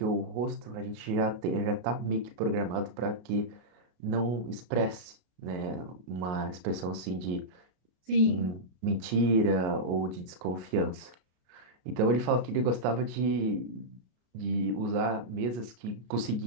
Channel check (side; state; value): left; late; 33 ms